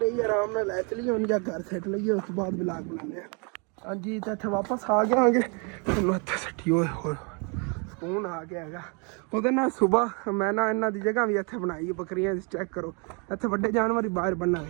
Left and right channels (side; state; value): left; quieter; 34.4 dB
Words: ਹੀ ਆਰਾਮ ਨਾਲ ਲੈ ਚਲੀਏ ਹੁਣ, ਜਾਂ ਘਰ ਸੈੱਟ ਲਈਏ, ਉਸ ਤੋਂ ਬਾਅਦ ਵਲੌਗ ਬਣਾਉਂਦੇ ਹਾਂ। ਹਾਂਜੀ ਤਾਂ ਇੱਥੇ ਵਾਪਸ ਆ ਗਏ ਆਂਗੇ, ਤੁਹਾਨੂੰ ਇੱਥੇ ਸੱਟੀ ਹੋਏ ਸਕੂਨ ਆ ਗਿਆ ਹੈਗਾ। ਉਹਦੇ ਨਾਲ ਸੁਬਾਹ ਮੈਂ ਨਾ ਇਹਨਾਂ ਦੀ ਜਗ੍ਹਾ ਵੀ ਇੱਥੇ ਬਣਾਈ, ਬੱਕਰੀਆਂ ਦੀ, ਚੈੱਕ ਕਰੋ ਇੱਥੇ ਵੱਡੇ ਜਾਨਵਰ ਹੀ ਬਾਹਰ